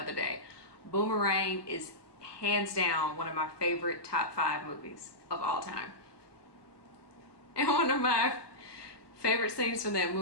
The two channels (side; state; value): right; late; 1.2 ms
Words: day. Boomerang is hands down one of my favorite top 5 movies of all time. And one of my favorite scenes from that